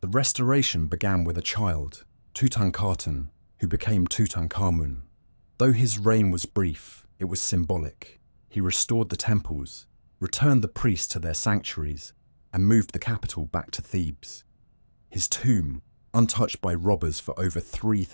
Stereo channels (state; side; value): inverted; both; correlation -1.00